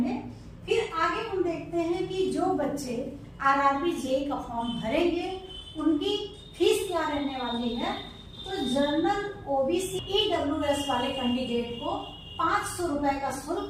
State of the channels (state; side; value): identical; both; correlation 1.00